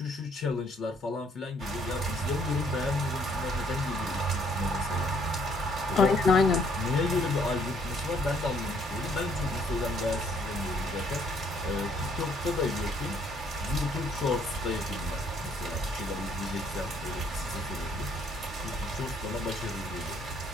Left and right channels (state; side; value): normal; both; correlation 0.66